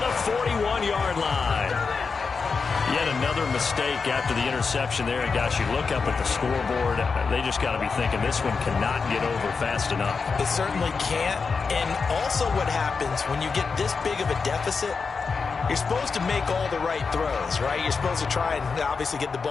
41-yard line. Yet another mistake after the interception there. And gosh, you look up at the scoreboard, they just got to be thinking this one cannot get over fast enough. It certainly can't. And also what happens when you get this big of a deficit, you're supposed to make all the right throws, right? You're supposed to try and obviously get the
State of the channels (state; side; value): quieter; right; 5.0 dB